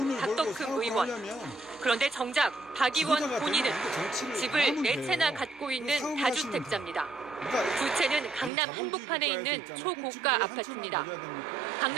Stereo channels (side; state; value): left; drops out; at 8.5 s